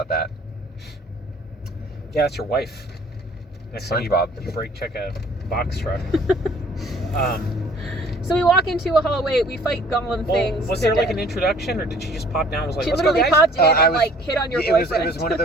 that. Yeah, that's your wife. Next time SpongeBob. you brake check a box truck. So we walk into a hallway, we fight golem Well, things. was they're there like dead. an introduction, or did she just pop down and was like, She let's go, literally guys? popped in I and was- like hit on your It was boyfriend. one of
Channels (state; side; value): normal; both; correlation 0.55